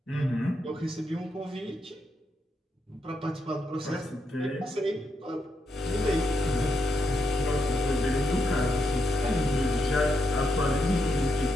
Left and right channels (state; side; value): normal; both; correlation 0.82